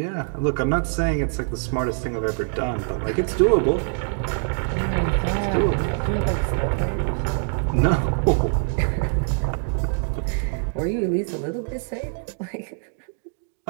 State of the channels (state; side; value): silent; left; 57 dB below the other